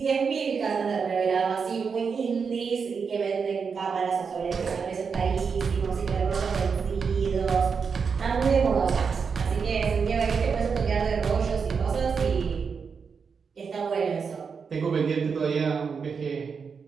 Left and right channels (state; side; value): quieter; left; 5.8 dB